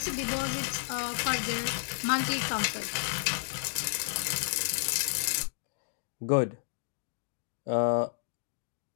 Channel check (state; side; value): silent; right; digital silence